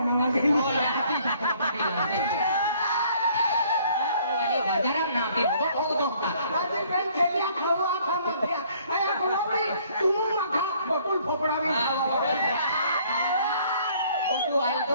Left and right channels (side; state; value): both; inverted; correlation -0.60